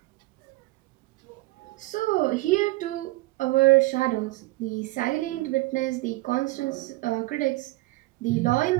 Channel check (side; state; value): left; quieter; 20.5 dB